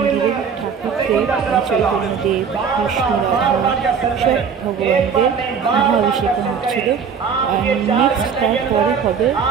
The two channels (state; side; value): quieter; left; 6.5 dB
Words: ঠাকুরদের চৈতন্যদেব, কৃষ্ণ, রাধা সব ভগবানদের মহাঅভিষেকম হচ্ছিল। নেক্সট তারপরে হবে